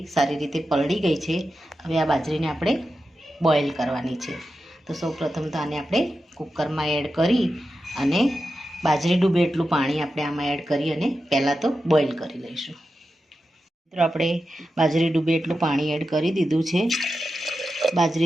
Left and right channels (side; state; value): both; normal; correlation 0.91